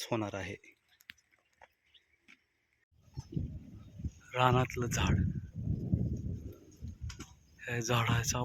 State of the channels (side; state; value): both; identical; correlation 1.00